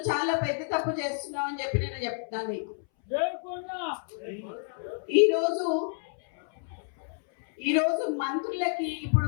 చాలా పెద్ద తప్పు చేస్తున్నావు అని చెప్పి నేను చెప్తున్నాను నీకు. ఈరోజు మంత్రులకి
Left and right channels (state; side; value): silent; right; 58 dB below the other